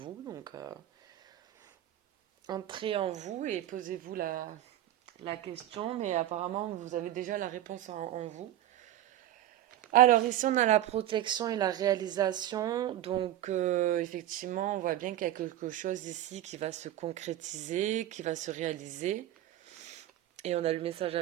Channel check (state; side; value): quieter; left; 13.0 dB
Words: Donc entrez en vous et posez-vous la question, mais apparemment vous avez déjà la réponse en vous. Alors ici on a la protection et la réalisation, donc effectivement on voit bien qu'il y a quelque chose ici qui va se concrétiser, qui va se réaliser. Et on a le message